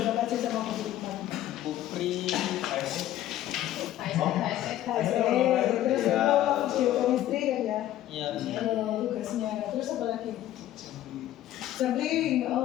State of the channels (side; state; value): right; quieter; 13.2 dB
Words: apa aja sama guru kemarin? Kupri, Terus geochemistry kan ya? Iya. Tugasnya. Terus apa lagi?